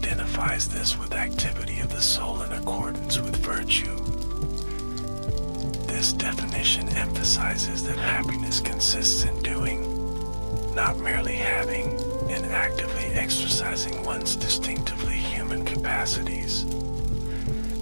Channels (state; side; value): inverted; both; correlation -1.00